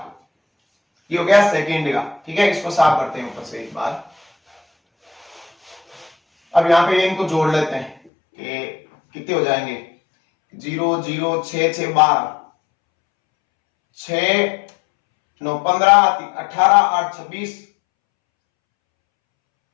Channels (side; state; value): right; drops out; at 8.0 s